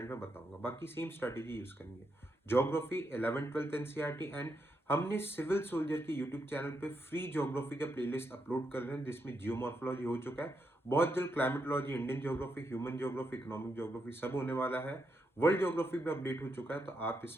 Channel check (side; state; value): both; normal; correlation 0.82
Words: में बताऊंगा, बाकी सेम स्ट्रेटेजी यूज करनी है। Geography 11th 12th NCERT, and हमने सिविल सोल्जर के यूट्यूब चैनल पे फ्री ज्योग्राफी का प्लेलिस्ट अपलोड कर रहे हैं, जिसमें जियोमॉर्फोलॉजी हो चुका है, बहुत जल्द climatology, Indian geography, human geography, economic geography सब होने वाला है। वर्ल्ड ज्योग्राफी भी अपडेट हो चुका है, तो आप